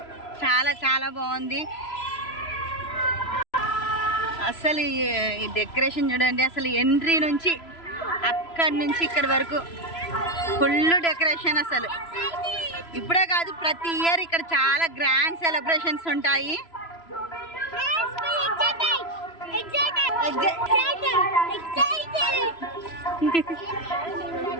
చాలా చాలా బాగుంది. అసలు ఈ డెకరేషన్ చూడండి, అసలు ఎంట్రీ నుంచి అక్కడి నుంచి ఇక్కడి వరకు ఫుల్ డెకరేషన్. అసలు ఇప్పుడే కాదు, ప్రతి ఇయర్ ఇక్కడ చాలా గ్రాండ్ సెలబ్రేషన్స్ ఉంటాయి.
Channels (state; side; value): late; right; 3.0 ms